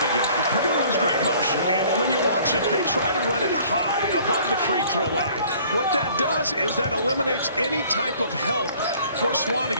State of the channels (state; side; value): inverted; both; correlation -0.54